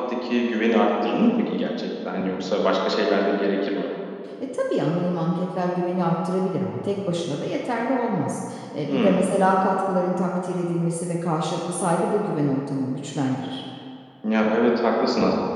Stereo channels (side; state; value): both; identical; correlation 1.00